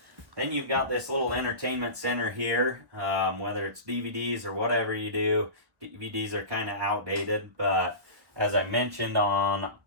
Then you've got this little entertainment center here, whether it's DVDs or whatever you do. DVDs are kind of outdated, but as I mentioned on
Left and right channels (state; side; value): late; left; 1.2 ms